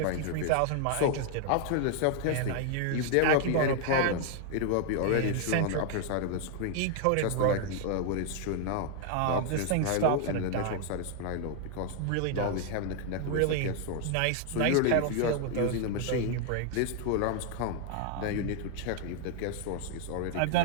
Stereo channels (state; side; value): different; both; correlation 0.00